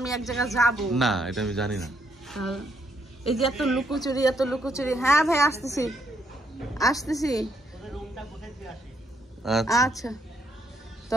এক জায়গায় যাব না, এটা আমি জানি না। এই যে এত লুকোচুরি। হ্যাঁ ভাই আসতেছি। আচ্ছা, তো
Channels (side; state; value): both; normal; correlation 0.73